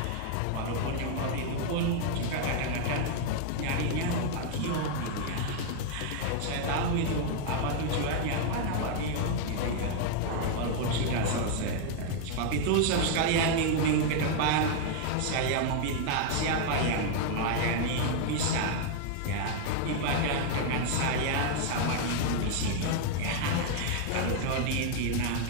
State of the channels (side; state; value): both; different; correlation 0.00